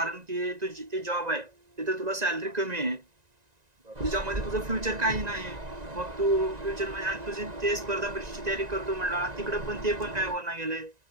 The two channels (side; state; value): left; late; 1.9 ms